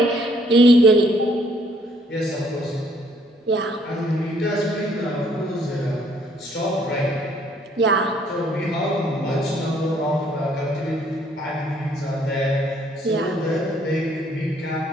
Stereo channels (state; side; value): normal; both; correlation 0.65